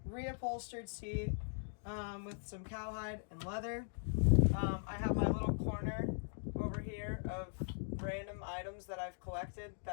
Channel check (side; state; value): right; silent; digital silence